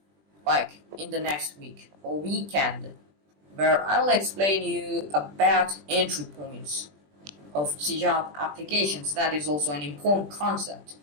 like in the next week or weekend, where I'll explain you about entry points of C# applications. That is also an important concept.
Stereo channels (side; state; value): left; late; 20 ms